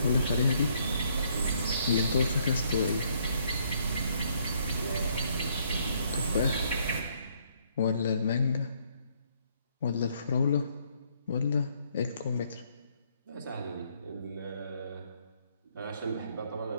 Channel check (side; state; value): both; inverted; correlation -0.68